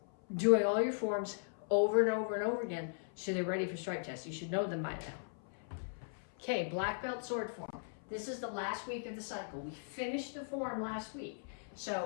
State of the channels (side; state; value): right; silent; 52 dB below the other